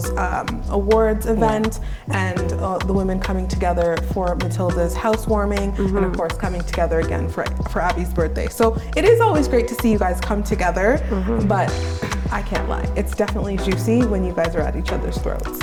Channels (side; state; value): both; identical; correlation 1.00